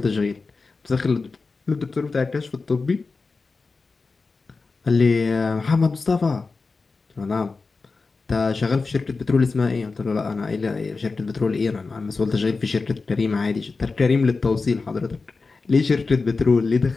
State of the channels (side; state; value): right; quieter; 4.1 dB